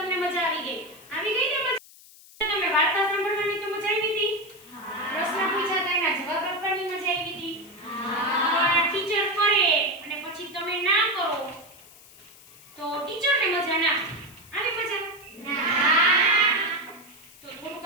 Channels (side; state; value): left; noise; hiss, 22 dB below the sound